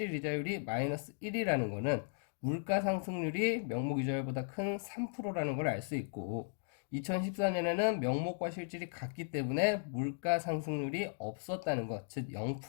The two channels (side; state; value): right; silent; digital silence